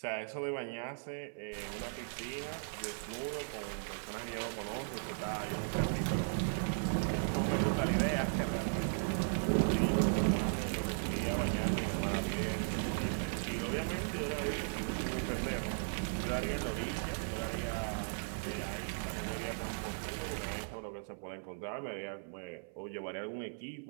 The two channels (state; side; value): silent; left; 53 dB below the other